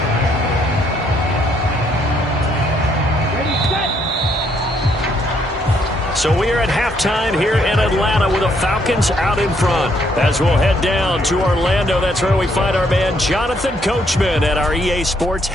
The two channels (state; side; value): normal; both; correlation 0.71